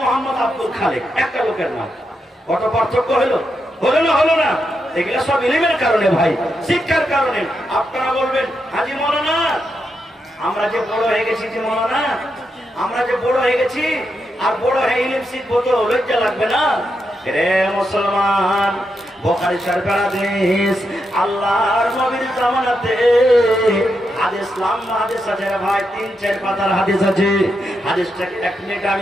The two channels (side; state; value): both; normal; correlation 0.84